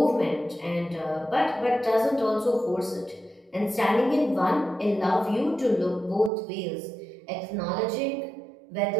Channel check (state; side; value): drops out; left; at 6.3 s